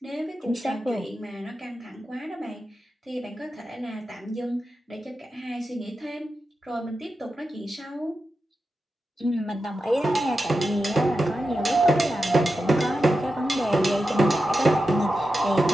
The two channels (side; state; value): both; normal; correlation 0.90